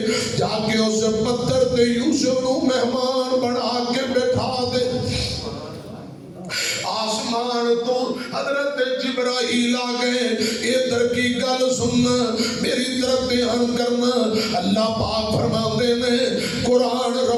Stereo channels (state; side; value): identical; both; correlation 1.00